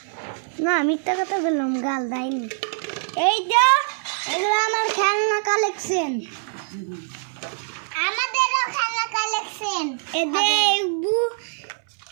না, মিথ্যা কথা বললাম, গাল দেয়নি। এই যে এগুলো আমার খেলনা কালেকশন, আমাদেরও খেলনা কালেকশন।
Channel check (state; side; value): silent; left; 63 dB below the other